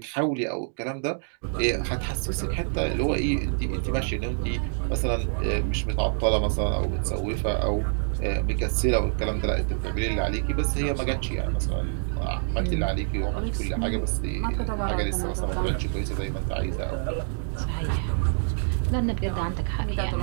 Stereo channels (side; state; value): left; silent; digital silence